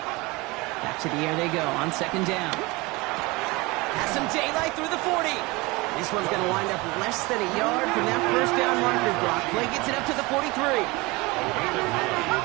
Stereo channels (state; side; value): quieter; left; 23.8 dB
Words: Back to the air they go on 2nd down. Has some daylight through the 40. This one's going to wind up less than a yard from that 1st down marker. Block play gets it up to the 43.